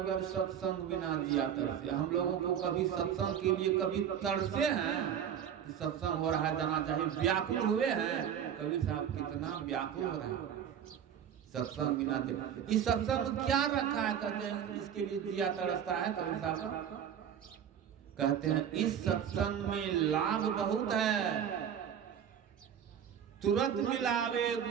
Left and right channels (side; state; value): left; quieter; 8.8 dB